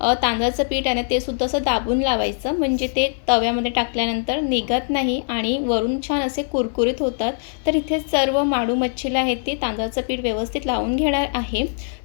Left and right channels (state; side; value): silent; right; digital silence